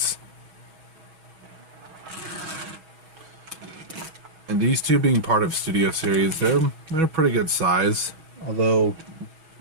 And these two being part of Studio Series, they're a pretty good size. Although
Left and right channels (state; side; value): late; left; 6.2 ms